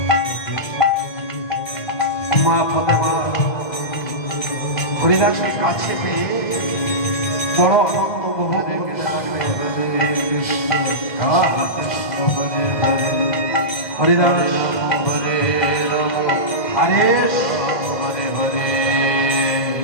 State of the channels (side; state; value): right; late; 2.0 ms